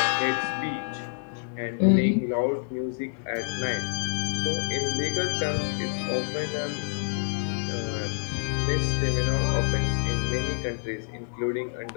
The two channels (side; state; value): right; silent; 57 dB below the other